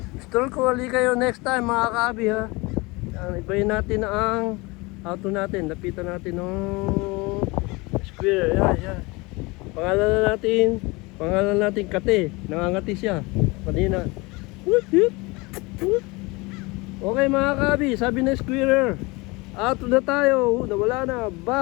Stroll ko ulit kayo next time mga kahabi ha. Ibayin natin ang auto natin. Lapitan natin ng square. Yan. Pangalan natin Kate. Nangangati siya. Kanina. Okay mga kabi, sabi na squirrel, auto na tayo, nawala na,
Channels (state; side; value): quieter; right; 24.9 dB